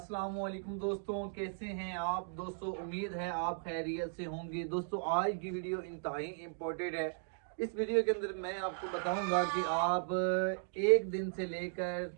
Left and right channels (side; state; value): left; silent; digital silence